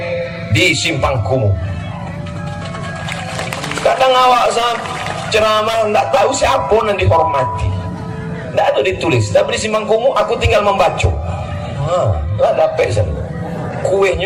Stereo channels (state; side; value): identical; both; correlation 1.00